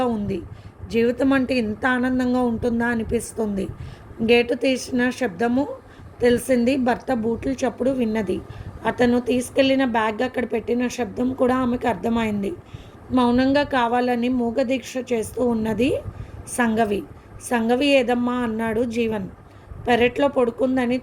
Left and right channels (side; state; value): both; identical; correlation 1.00